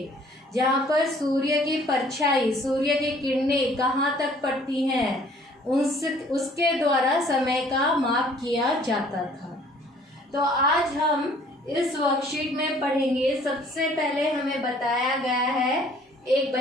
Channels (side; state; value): both; normal; correlation 0.56